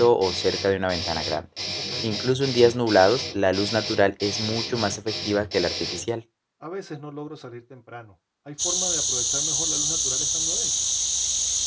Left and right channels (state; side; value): identical; both; correlation 1.00